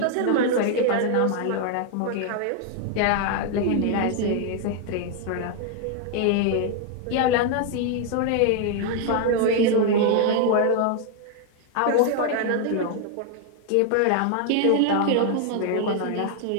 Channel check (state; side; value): different; both; correlation 0.00